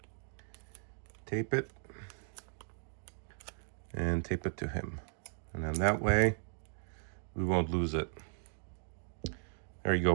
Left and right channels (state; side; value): silent; left; 53 dB below the other